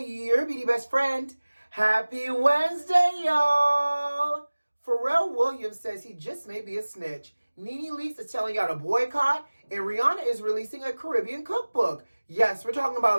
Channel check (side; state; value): both; inverted; correlation -1.00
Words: your beauty best friend. Happy Wednesday, y'all! Pharrell Williams says he just may be a snitch. NeNe Leakes is telling y'all to boycott, and Rihanna is releasing a Caribbean cookbook. Yes, we're talking